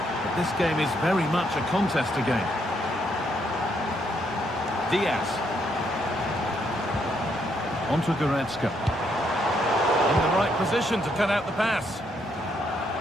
this game is very much a contest again. Diaz. Onto Goretzka. In the right position to cut out the pass.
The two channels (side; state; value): both; normal; correlation 0.74